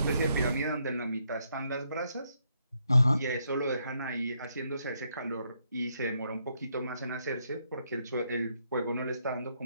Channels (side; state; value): both; inverted; correlation -0.76